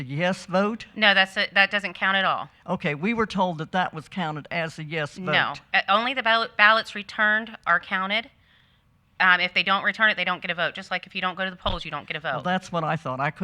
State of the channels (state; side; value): identical; both; correlation 1.00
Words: yes vote? No, that doesn't count at all. Okay, we were told that that was counted as a yes vote. No, only the ballots returned are counted. If they don't return it, they don't get a vote. Just like if you don't go to the polls, you don't get a Well, vote. that's what I thought. I